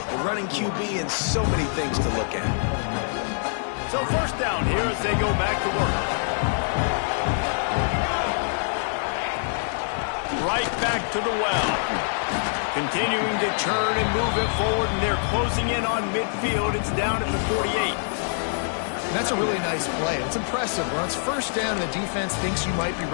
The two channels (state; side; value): silent; right; digital silence